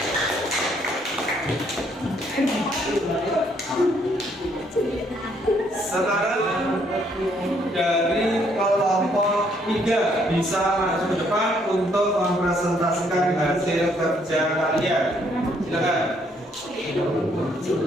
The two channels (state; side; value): normal; both; correlation 0.68